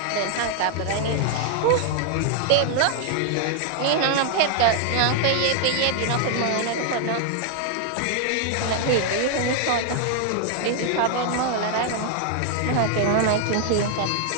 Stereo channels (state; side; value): different; both; correlation 0.00